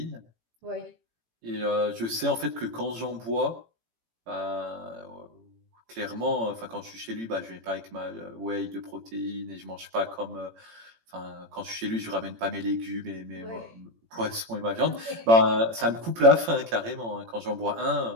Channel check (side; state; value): left; late; 18 ms